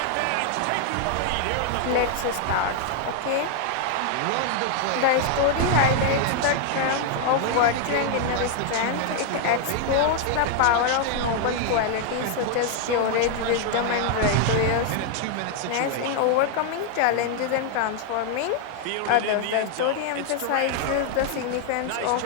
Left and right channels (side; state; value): both; different; correlation 0.00